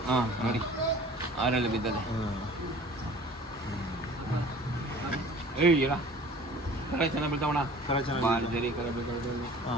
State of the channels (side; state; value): both; normal; correlation 0.46